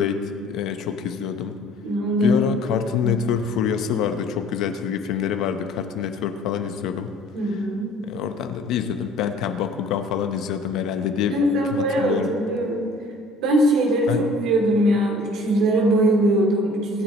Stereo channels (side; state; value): both; normal; correlation 0.51